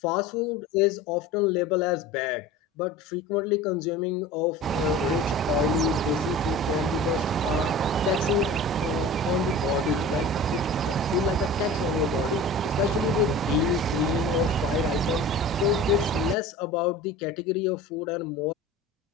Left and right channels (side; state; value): both; normal; correlation 0.38